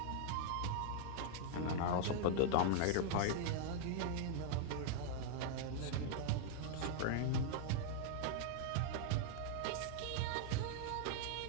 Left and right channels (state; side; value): different; both; correlation 0.00